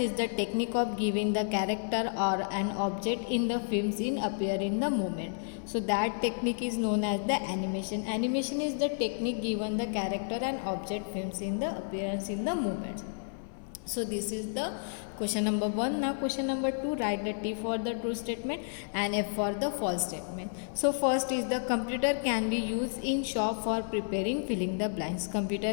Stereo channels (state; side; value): silent; right; 57 dB below the other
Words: the technique of giving the character or an object in the films in appear in the movement. So that technique is known as the animation. Animation is the technique given the character and object films in the appearance in the movement. So this is the question number 1. Now question number 2, write the T for the true statement and F for the false statement. So first is the computer can be used in shop for preparing filling the blanks. Computer